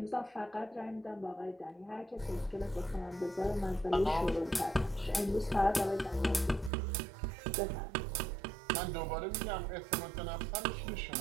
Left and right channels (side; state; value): left; drops out; at 6.7 s